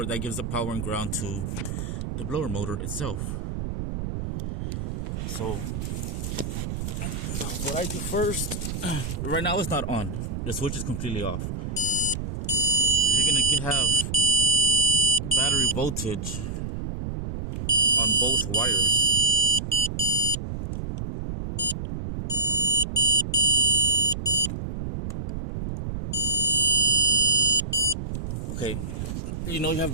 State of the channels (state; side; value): noise; right; rumble, 5 dB below the sound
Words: that gives the power and ground to the blower motor itself. So what I do first, right now it's not on, the switch is completely off, so you're gonna have battery voltage on both wires. Okay, you